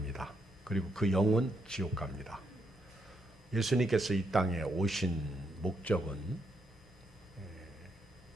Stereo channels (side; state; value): both; normal; correlation 0.78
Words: 그리고 그 영은 지옥 갑니다. 예수님께서 이 땅에 오신 목적은